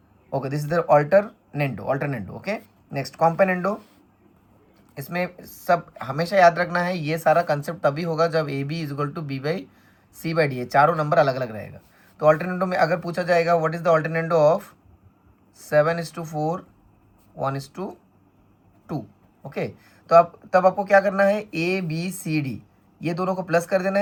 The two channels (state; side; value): identical; both; correlation 1.00